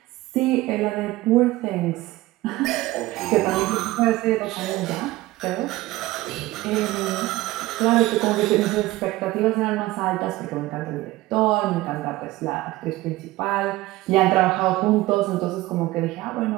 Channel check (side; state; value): left; quieter; 18.2 dB